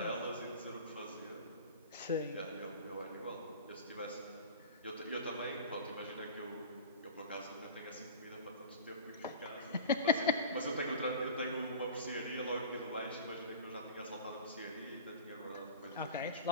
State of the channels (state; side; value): inverted; both; correlation -0.36